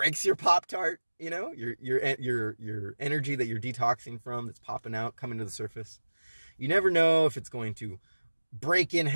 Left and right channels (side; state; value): both; inverted; correlation -1.00